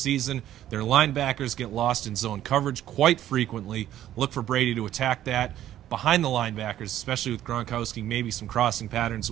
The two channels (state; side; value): quieter; left; 12.3 dB